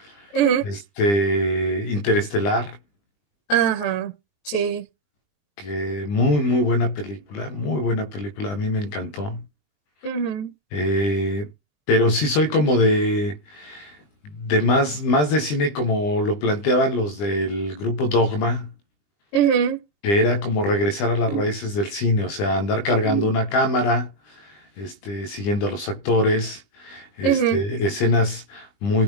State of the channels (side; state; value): right; late; 20 ms